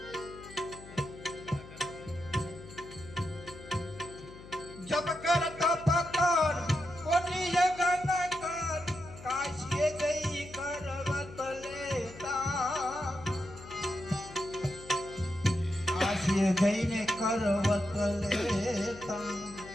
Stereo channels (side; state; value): left; noise; hum, 16 dB below the sound